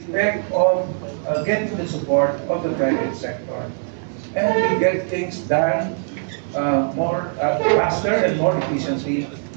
expect of getting the support of the private sector. And we get things done more faster and more efficiently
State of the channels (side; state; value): left; silent; digital silence